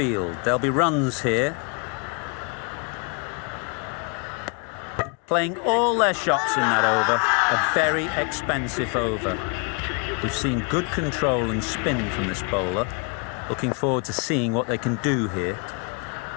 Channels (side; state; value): right; quieter; 35.5 dB